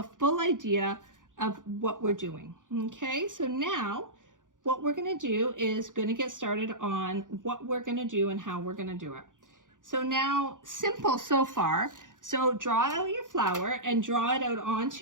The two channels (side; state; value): left; late; 0.88 ms